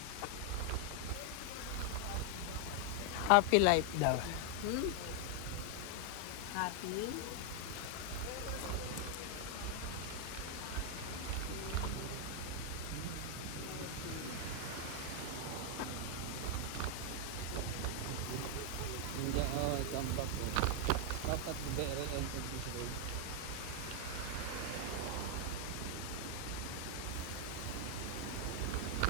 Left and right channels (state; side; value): different; both; correlation 0.00